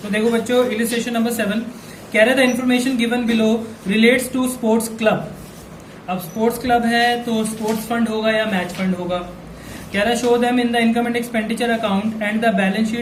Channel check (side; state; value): both; identical; correlation 1.00